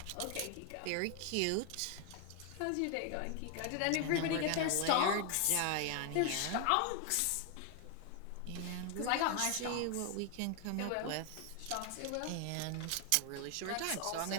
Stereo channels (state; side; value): different; both; correlation 0.01